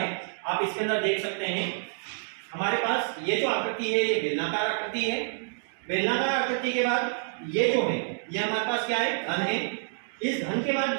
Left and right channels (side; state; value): left; silent; digital silence